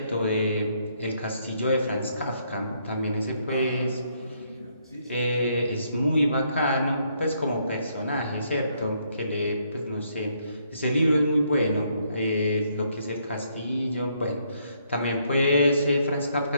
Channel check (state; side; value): inverted; both; correlation -0.72